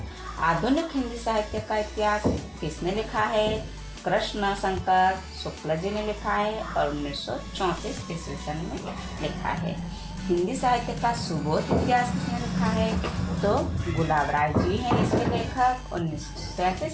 आधुनिक हिंदी साहित्य का इतिहास किसने लिखा है, कृष्ण शंकर शुक्ल जी ने लिखा है और 1934 ईस्वी सन में लिखा है। हिंदी साहित्य का सुबोध इतिहास किसने लिखा है, तो गुलाब राय जी हैं इसके लेखक,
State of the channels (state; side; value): identical; both; correlation 1.00